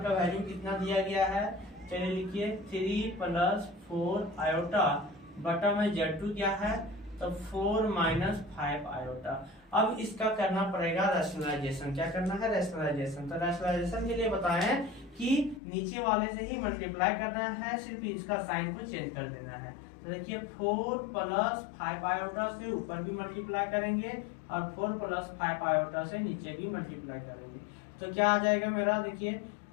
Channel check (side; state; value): right; drops out; at 15.6 s